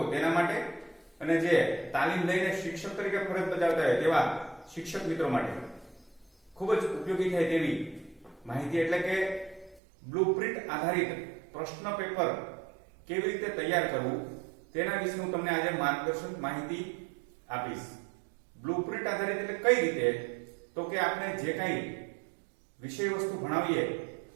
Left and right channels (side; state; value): left; drops out; at 9.8 s